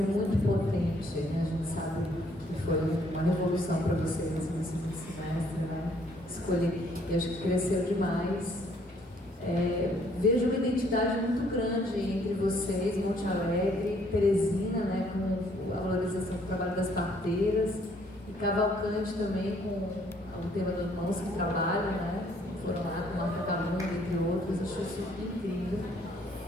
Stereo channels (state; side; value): normal; both; correlation 0.64